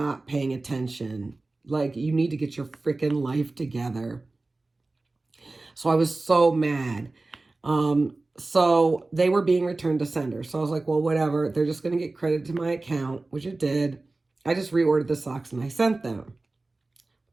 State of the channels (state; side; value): quieter; left; 3.2 dB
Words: paying attention. Like, you need to get your freaking life together. So I was so mad. So they were being returned to sender. So I was like, well, whatever. They're just going to get credit to my account, which it did. I just reordered the socks and I sent them.